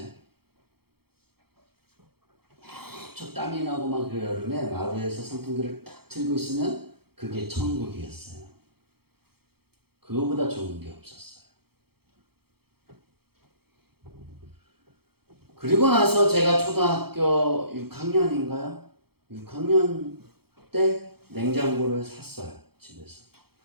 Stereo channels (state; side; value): late; left; 0.96 ms